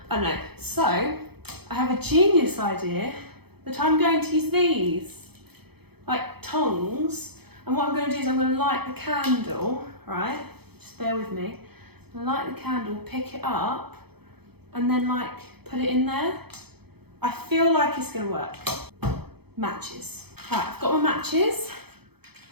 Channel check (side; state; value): left; late; 0.97 ms